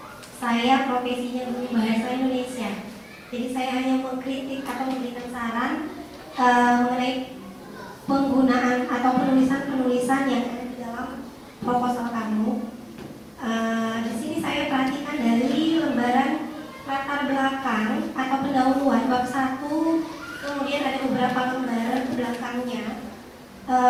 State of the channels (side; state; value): both; identical; correlation 1.00